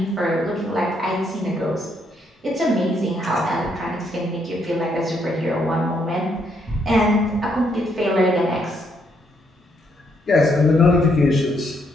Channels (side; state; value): both; normal; correlation 0.74